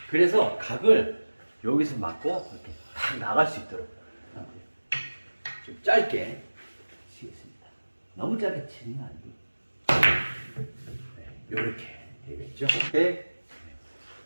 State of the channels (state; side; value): inverted; both; correlation -1.00